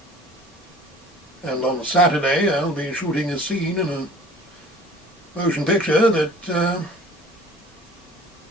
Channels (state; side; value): normal; both; correlation 0.47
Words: and on Saturday I'll be shooting a scene in a motion picture that,